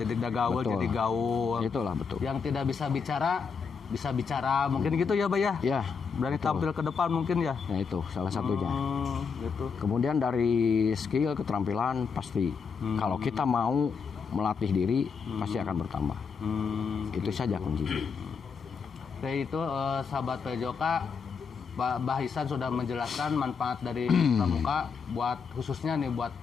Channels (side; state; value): right; quieter; 5.7 dB